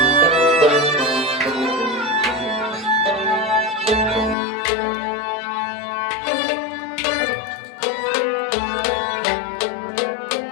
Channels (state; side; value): drops out; right; at 4.4 s